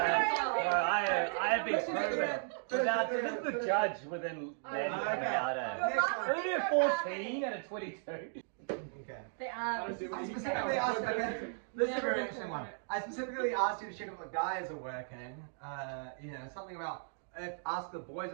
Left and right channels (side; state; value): left; silent; digital silence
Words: I have been proven. Without, this is the judge within Matty coming out of. Only a 14 and a 22. Okay. They are. I specifically asked, okay, this is a very interesting one. I specifically asked you to check if the guys are working. You know, something about, ask the boys